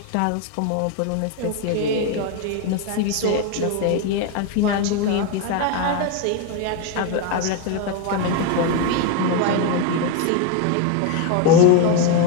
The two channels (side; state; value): both; different; correlation 0.01